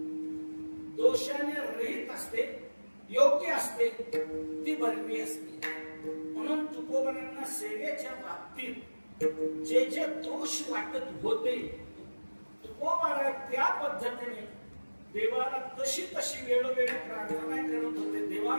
दोषाने रहित असते, योग्य असते ती बरवी असते. म्हणून तुकोबांना सेवेच्या बाबतीत जे जे दोष वाटत होते तुकोबारा त्या पद्धतीने देवाला तशी तशी वेळोवेळी प्रार्थना करत होते, देवा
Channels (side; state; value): both; inverted; correlation -1.00